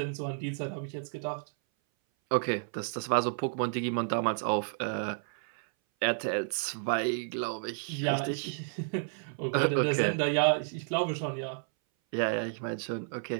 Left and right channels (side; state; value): left; silent; 57 dB below the other